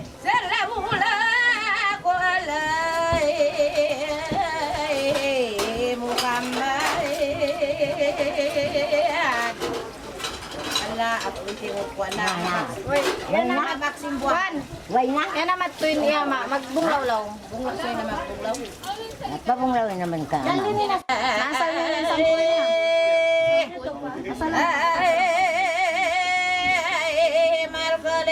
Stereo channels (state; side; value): identical; both; correlation 1.00